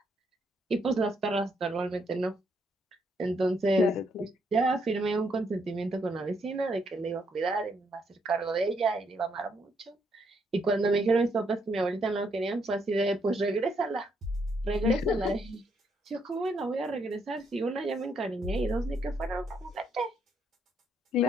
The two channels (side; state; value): both; normal; correlation 0.74